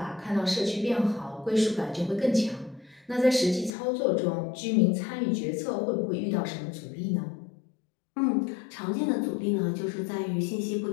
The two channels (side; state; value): right; drops out; at 3.7 s